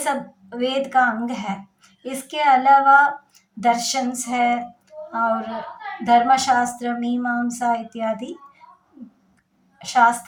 वेद का अंग है। इसके अलावा दर्शन है और धर्मशास्त्र, मीमांसा इत्यादि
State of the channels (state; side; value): identical; both; correlation 1.00